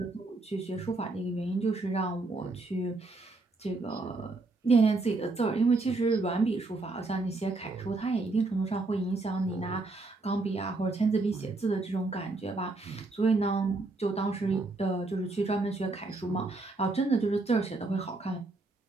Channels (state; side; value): quieter; left; 3.3 dB